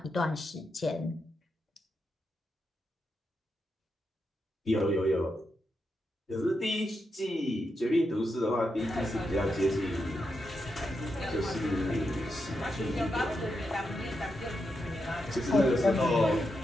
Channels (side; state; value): both; normal; correlation 0.85